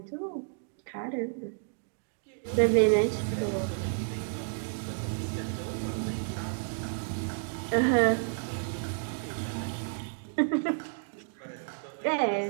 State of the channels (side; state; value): left; silent; digital silence